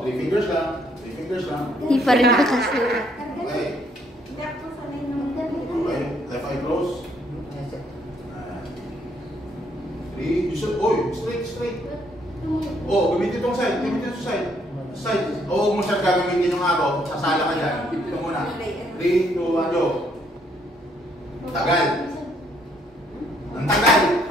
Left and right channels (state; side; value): normal; both; correlation 0.69